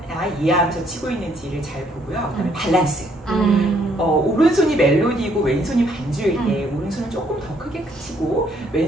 이해하면서 치고 있는지를 잘 보고요. 그다음에 밸런스. 오른손이 멜로디고 왼손이 반주일 때 오른손을 조금 더 크게 치고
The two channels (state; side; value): normal; both; correlation 0.67